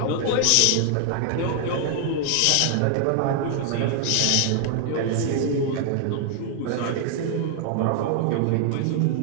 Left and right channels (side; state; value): both; different; correlation 0.00